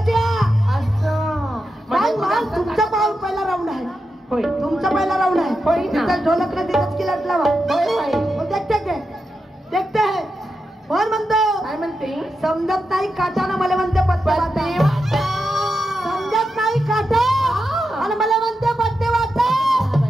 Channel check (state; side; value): normal; both; correlation 0.88